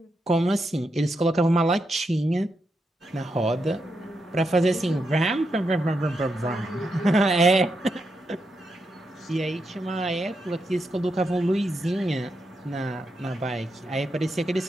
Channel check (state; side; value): normal; both; correlation 0.84